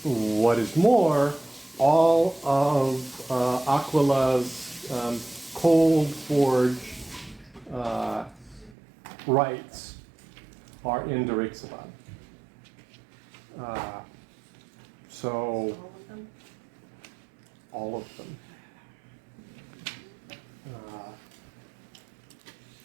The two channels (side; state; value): left; drops out; at 8.8 s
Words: What is more, all of Aquila's cold forge rights are in Drexabad. So all of them.